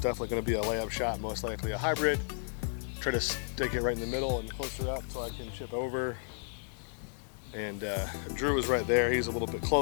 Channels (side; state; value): right; silent; 56 dB below the other